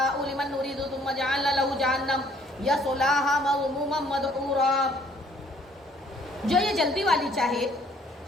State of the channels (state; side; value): normal; both; correlation 0.61